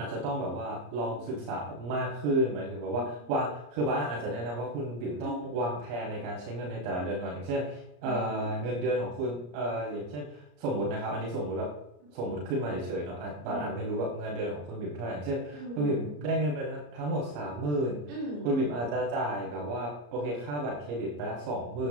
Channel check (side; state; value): left; late; 34 ms